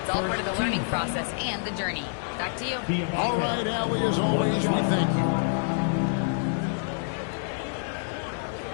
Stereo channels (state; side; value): silent; right; 60 dB below the other